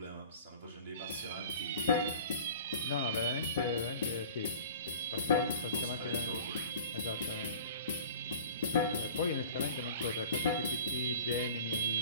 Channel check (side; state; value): both; inverted; correlation -0.42